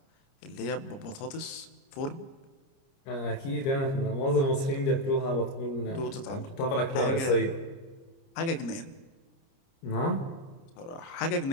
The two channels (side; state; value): right; late; 30 ms